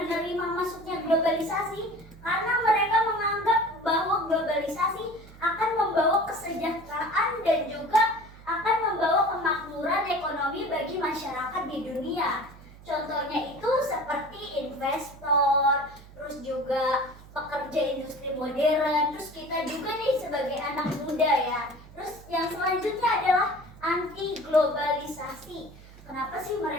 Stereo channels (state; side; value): noise; right; hum, 20 dB below the sound